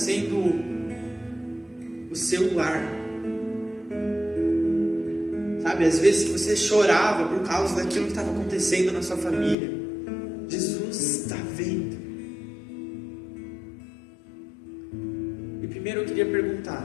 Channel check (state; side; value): drops out; right; at 9.6 s